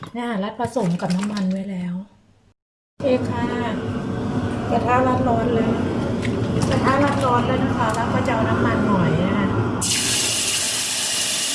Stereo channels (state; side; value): identical; both; correlation 1.00